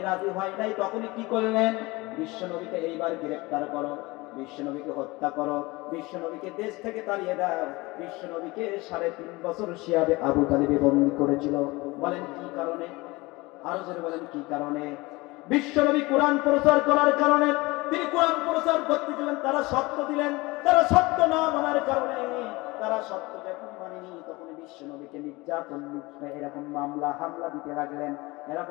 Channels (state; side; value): quieter; right; 22.6 dB